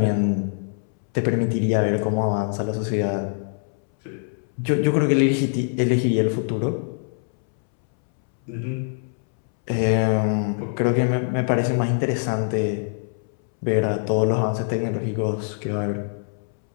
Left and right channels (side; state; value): right; silent; 63 dB below the other